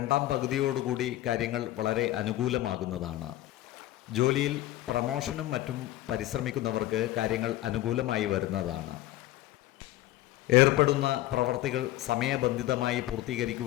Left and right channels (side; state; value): right; quieter; 15.5 dB